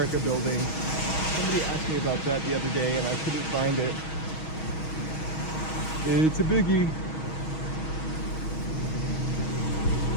building. Somebody asked me about that the other day and I couldn't find it. It's a biggie.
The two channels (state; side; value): late; right; 6.3 ms